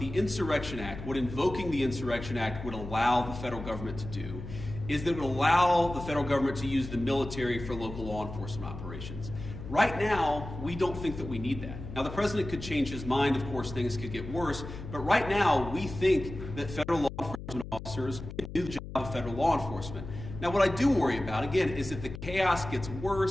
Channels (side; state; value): left; noise; hum, 10 dB below the sound